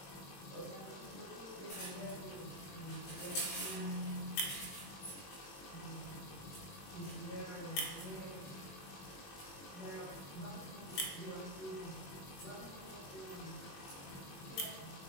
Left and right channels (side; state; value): right; late; 21 ms